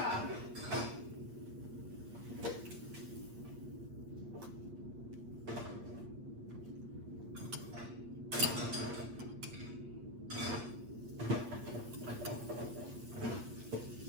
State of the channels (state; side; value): late; left; 8.5 ms